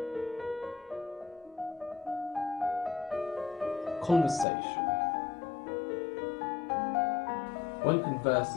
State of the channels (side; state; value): right; drops out; at 4.5 s